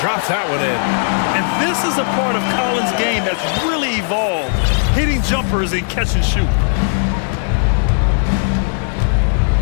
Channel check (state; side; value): silent; right; 66 dB below the other